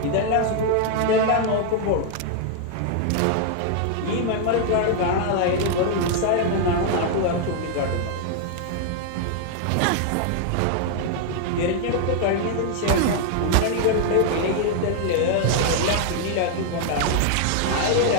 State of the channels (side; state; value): both; different; correlation 0.00